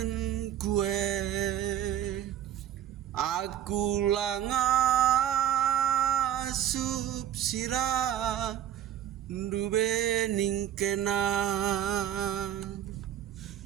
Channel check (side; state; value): left; quieter; 10.8 dB